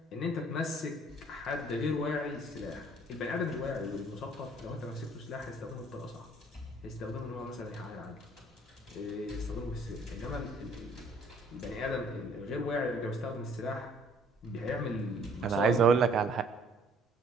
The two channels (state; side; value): normal; both; correlation 0.59